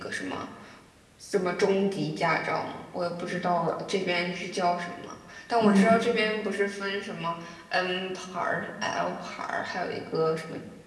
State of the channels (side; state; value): both; identical; correlation 1.00